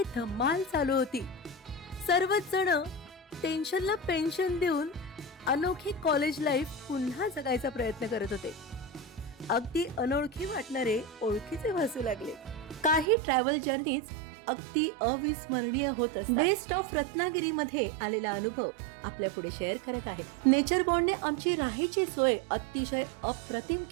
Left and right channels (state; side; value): drops out; left; at 13.1 s